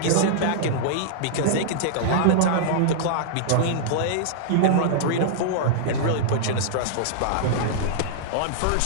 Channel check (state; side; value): different; both; correlation -0.02